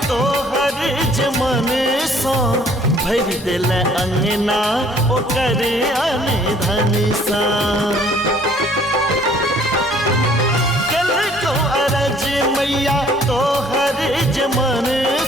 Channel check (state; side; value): normal; both; correlation 0.58